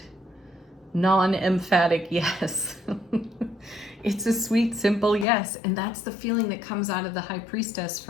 non-emphatic yes. It's a sweet, simple yes. And that's the feeling that comes out of the High Priestess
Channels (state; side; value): drops out; right; at 5.2 s